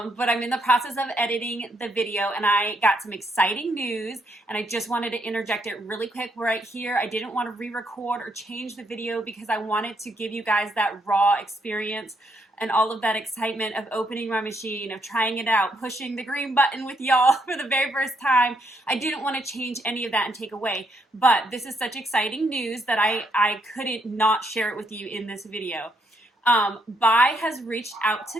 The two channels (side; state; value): both; normal; correlation 0.75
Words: I'm in the process of editing the video, and I got some exciting news, and I just wanted to interject it really quick right here. I didn't want to re-record or change the video because I wanted to give you guys that raw experience and all of that excitement of opening my machine, of trying it out, pushing the green button with y'all for the very first time. I didn't want to change any of that and take away, but this is such exciting news that I couldn't not share it with you in this video. BAi has reached out